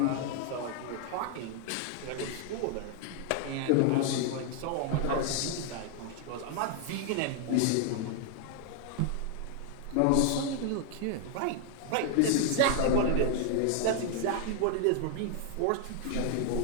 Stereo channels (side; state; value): both; different; correlation 0.00